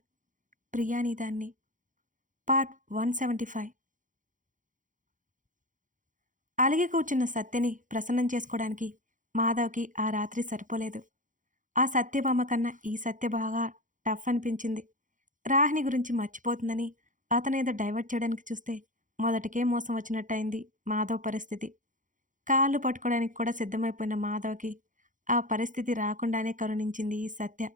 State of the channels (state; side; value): late; left; 0.37 ms